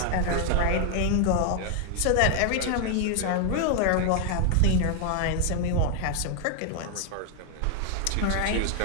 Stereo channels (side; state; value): both; different; correlation 0.00